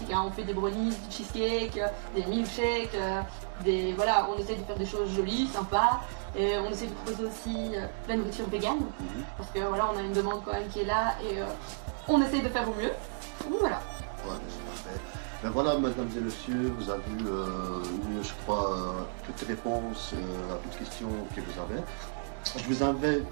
hein. On fait des brownies, du cheesecake, des milkshakes, voilà, on essaie de faire des choses jolies, sympas. Et on essaie de proposer aussi de la nourriture végane, parce que voilà, on a une demande quand même qui est là et on essaie de faire au mieux. Donc voilà. Ouais, c'est parfait. Ben voilà, mesdames et messieurs, vous avez eu, je crois, toutes les réponses à toutes les questions que vous avez. Je vous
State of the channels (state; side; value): silent; left; digital silence